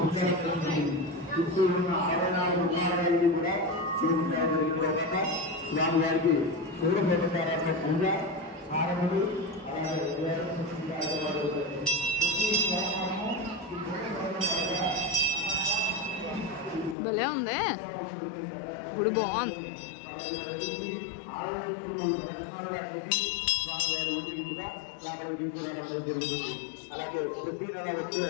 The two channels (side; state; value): right; drops out; at 16.9 s